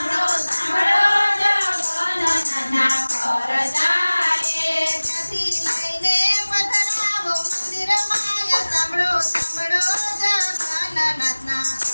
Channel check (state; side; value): inverted; both; correlation -1.00